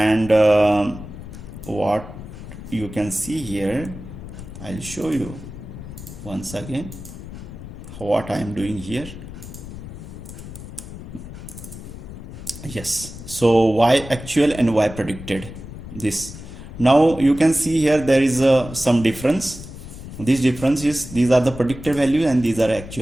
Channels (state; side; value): noise; left; rumble, 12 dB below the sound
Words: what you can see here, I'll show you once again what I am doing here. Yes, so y actual and y predicted, this. Now you can see here there is some difference. This difference is, these are the predicted values and these are